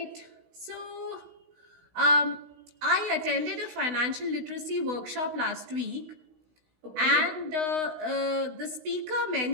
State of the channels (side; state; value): left; late; 16 ms